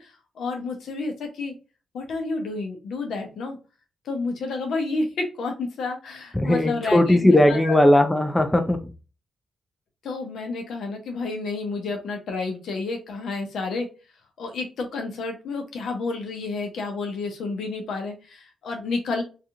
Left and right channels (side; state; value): both; normal; correlation 0.88